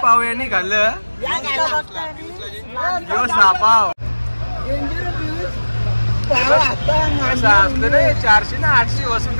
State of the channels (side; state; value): both; inverted; correlation -1.00